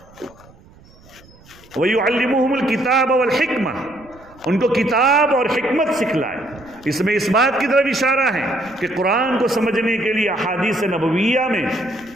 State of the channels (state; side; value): noise; right; rumble, 26 dB below the sound